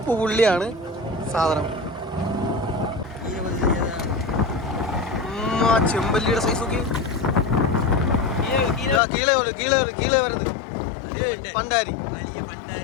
പുള്ളിയാണ് സാധനം. ചെമ്പല്ലിയുടെ സൈസ് നോക്കി. കീഴെ വരുന്നത് പണ്ടാരി,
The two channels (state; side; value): drops out; right; at 9.0 s